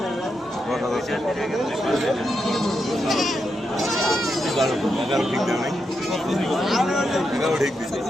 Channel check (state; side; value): normal; both; correlation 0.84